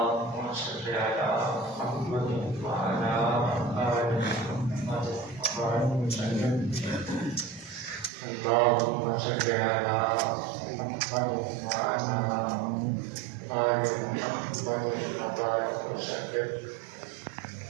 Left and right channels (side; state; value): left; drops out; at 8.1 s